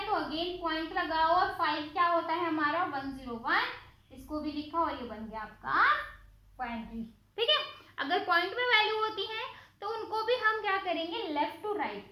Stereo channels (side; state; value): both; identical; correlation 1.00